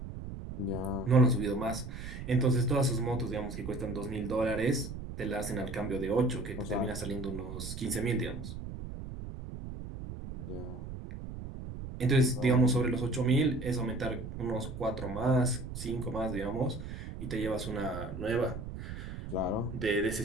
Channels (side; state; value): right; noise; rumble, 8 dB below the sound